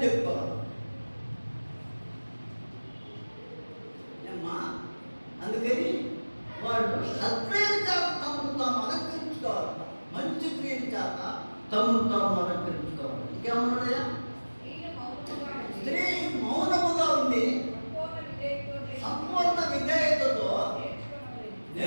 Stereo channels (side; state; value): both; inverted; correlation -1.00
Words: చెప్పుకోవాలి. అందుకని వాళ్ళు సత్క్రియల చేత తమను తాము అలంకరించుకోవాలి, మంచి క్రియల చేత తమను తాము అలంకరించుకోవాలి. ఇంకేమన్నాయా? స్త్రీ మౌనముగా ఉండి సంపూర్ణ విధేయతతో